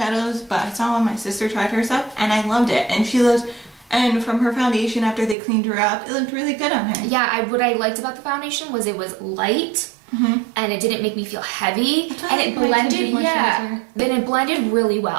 but I saw when my sister tried her stuff, and I loved it. And and from her foundation after they cleaned her up, it looked really good on her. Yeah, what I liked about the foundation was it was light, and it didn't make me feel heavy, and it blended. Then it blended really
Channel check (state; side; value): drops out; left; at 5.4 s